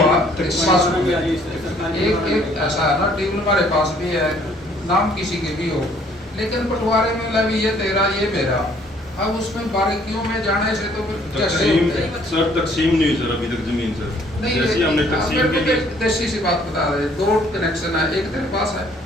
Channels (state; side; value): normal; both; correlation 0.61